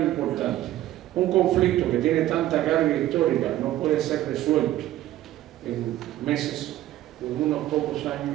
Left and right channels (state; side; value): quieter; left; 14.1 dB